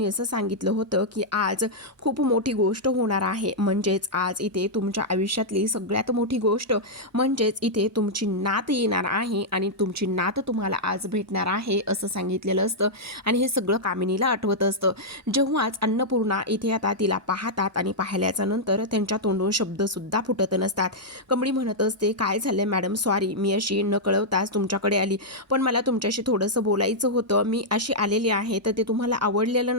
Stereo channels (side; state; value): both; normal; correlation -0.07